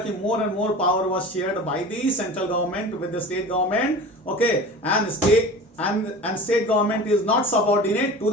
कि more and more power was shared by the central government with the state government, okay, and state government is not subordinate to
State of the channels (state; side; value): normal; both; correlation 0.36